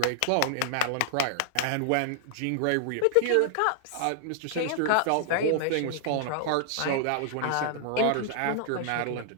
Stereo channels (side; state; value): both; different; correlation -0.01